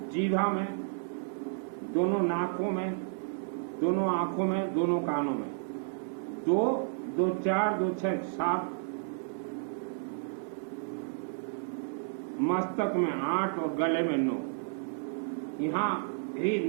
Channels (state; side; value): silent; left; digital silence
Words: जीभा में, दोनों नाकों में, दोनों आँखों में, दोनों कानों में। 2, 2, 4, 2, 6, 7, मस्तक में 8 और गले में 9। यहाँ ही